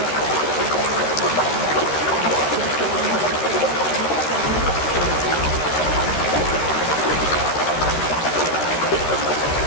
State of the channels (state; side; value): late; right; 13 ms